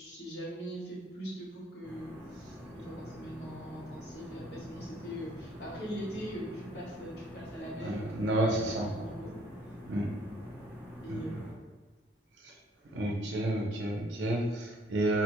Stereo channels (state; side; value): normal; both; correlation 0.62